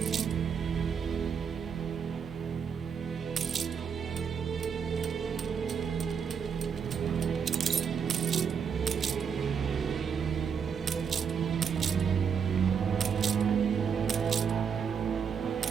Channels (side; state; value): left; quieter; 6.8 dB